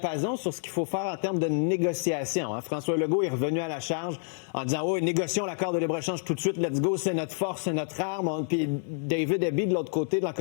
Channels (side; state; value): right; silent; digital silence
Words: sur ce qu'il faut faire en termes de négociation. Hein. François Legault est revenu à la charge en disant « Oh, négocions l'accord de libre-échange tout de suite, let's go, c'est notre force, c'est notre arme. » Puis David Eby, de l'autre côté, de la